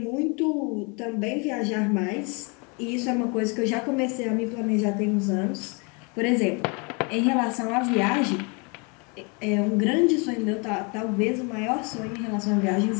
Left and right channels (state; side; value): quieter; right; 32.2 dB